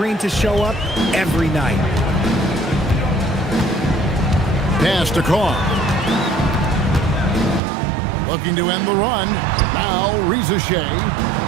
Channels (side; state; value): left; drops out; at 7.6 s